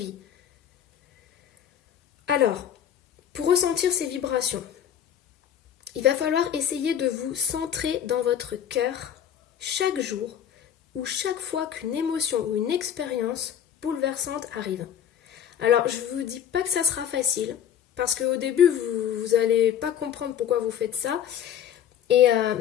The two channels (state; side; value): quieter; right; 9.5 dB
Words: Alors, pour ressentir ces vibrations, il va falloir essayer de vous centrer dans votre cœur chaque jour ou chaque fois qu'une émotion ou une expérience bouleversante arrive. Alors, je ne vous dis pas que ça sera facile, parce qu'au début, vous n'allez pas comprendre pourquoi vous faites ça,